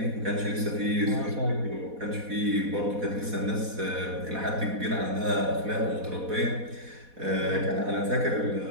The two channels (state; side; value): late; left; 4.1 ms